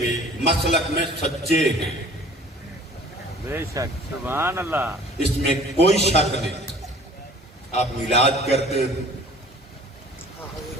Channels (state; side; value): normal; both; correlation 0.49